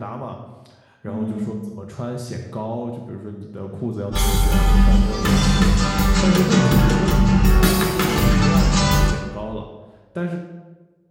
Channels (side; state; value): both; identical; correlation 1.00